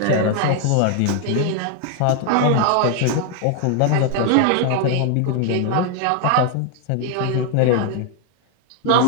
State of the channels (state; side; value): different; both; correlation 0.00